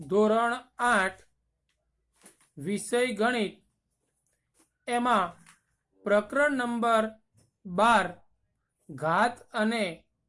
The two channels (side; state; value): both; identical; correlation 1.00